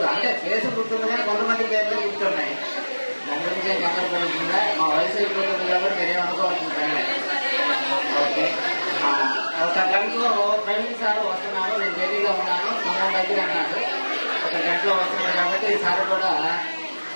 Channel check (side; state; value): both; inverted; correlation -1.00